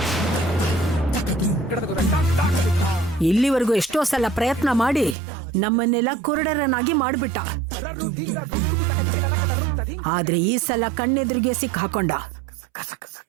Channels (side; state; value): left; drops out; at 5.2 s